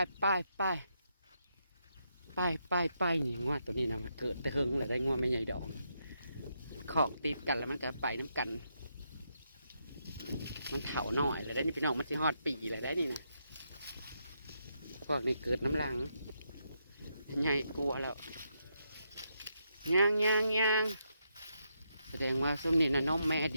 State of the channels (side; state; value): both; inverted; correlation -0.80